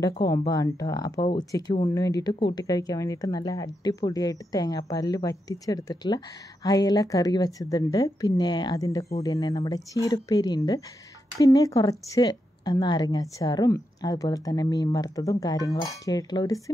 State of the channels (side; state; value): both; normal; correlation 0.85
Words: കോംബോ ആണ് കേട്ടോ. അപ്പോൾ ഉച്ചയ്ക്ക് ഊണിന് വേണ്ടിയിട്ട് കൂട്ടി കഴിക്കാൻ വേണ്ടിയിട്ട് നല്ല അടിപൊളിയായിട്ട് തേങ്ങാപ്പാലിൽ വറ്റിച്ചെടുത്തിട്ടുള്ള അയല കറി വെച്ചതുണ്ട്. പിന്നെ അതിൻ്റെ കൂടെ തന്നെ നമ്മുടെ ചീരപ്പേരി ഉണ്ട്. പിന്നെ കുറച്ച് നാരങ്ങാച്ചാറും അതുപോലെ തന്നെ മീൻ വറുത്തതും കാര്യങ്ങളൊക്കെ ആയിട്ടുള്ള ഒരു